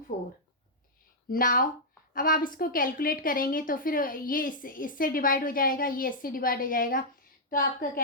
Now अब आप इसको कैलकुलेट करेंगे तो फिर ये इससे डिवाइड हो जाएगा, ये इससे डिवाइड हो जाएगा, तो आपका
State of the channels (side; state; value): both; normal; correlation -0.07